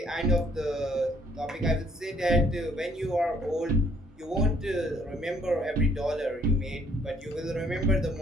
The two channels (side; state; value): both; normal; correlation 0.62